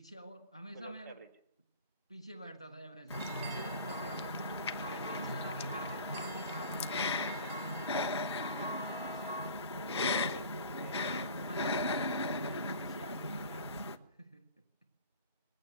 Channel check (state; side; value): inverted; both; correlation -0.40